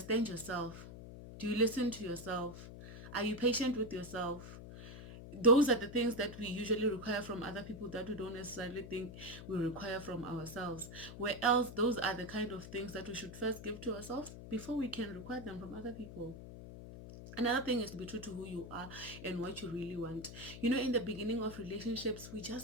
yourself? Do you listen to yourself? Are you patient with yourself? Those are the things that we usually require from other people that we don't necessarily think we require from ourselves. Where else, those are the kind of things that we should first give to ourselves before we can require them from other people. Another thing is to be true to who you are and what you really want. You know, in the beginning of relationships, we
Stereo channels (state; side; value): noise; left; hum, 12 dB below the sound